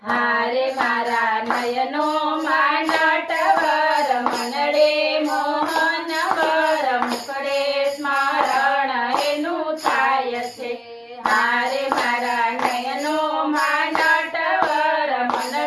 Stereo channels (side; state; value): both; identical; correlation 1.00